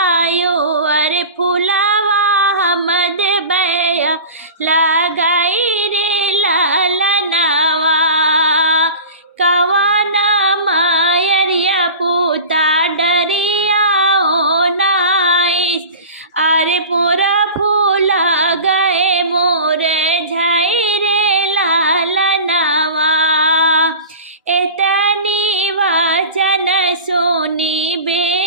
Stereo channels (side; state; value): both; inverted; correlation -0.34